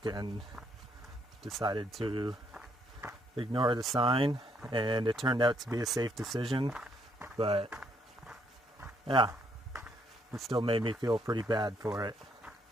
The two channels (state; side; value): normal; both; correlation 0.72